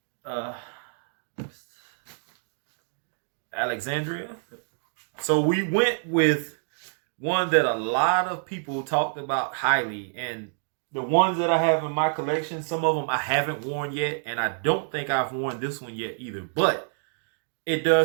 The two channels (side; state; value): left; silent; digital silence